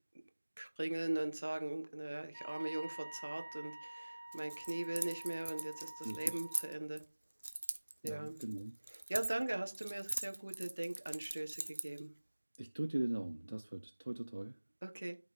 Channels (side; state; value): both; inverted; correlation -1.00